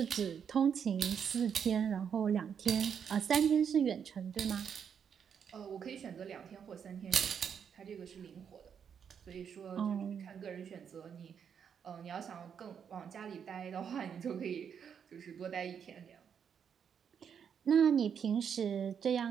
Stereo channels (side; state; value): left; quieter; 7.5 dB